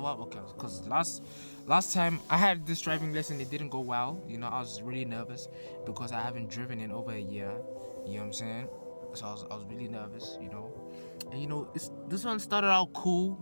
up, okay? Because last time I had this driving lesson, it didn't go well. You know, I was really nervous because I haven't driven in over a year. You know what I'm saying? So I was really nervous, you know. And you know, this one started out cool.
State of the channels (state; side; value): inverted; both; correlation -1.00